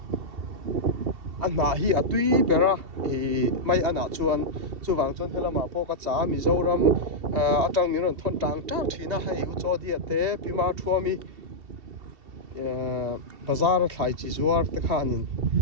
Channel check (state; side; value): late; left; 2.7 ms